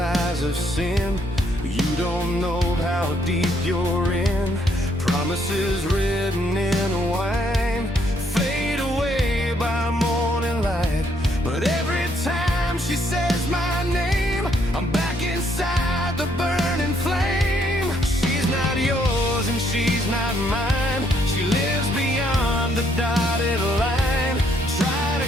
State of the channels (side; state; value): both; normal; correlation 0.70